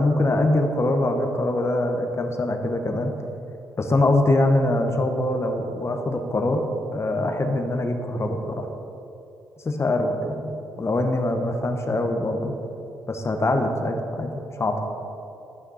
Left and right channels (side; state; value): both; normal; correlation 0.82